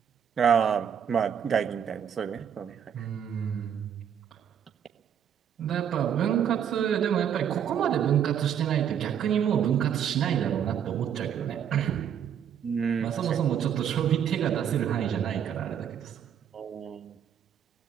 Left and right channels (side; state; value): left; quieter; 8.6 dB